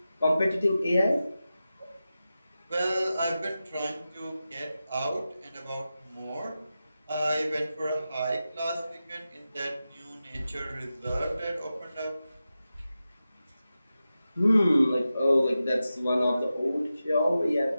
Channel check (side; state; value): both; inverted; correlation -0.92